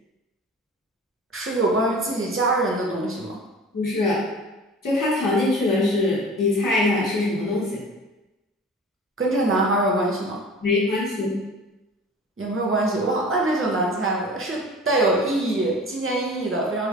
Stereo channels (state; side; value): normal; both; correlation 0.40